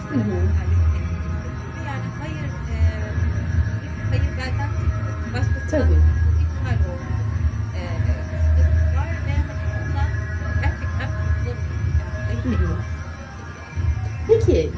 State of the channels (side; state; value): both; identical; correlation 1.00